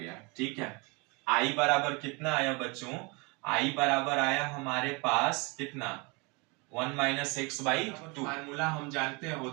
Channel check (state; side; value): quieter; left; 29.1 dB